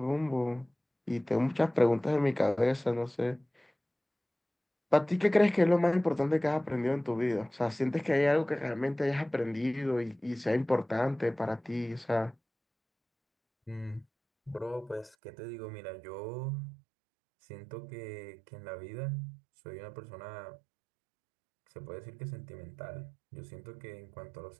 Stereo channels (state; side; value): drops out; left; at 15.2 s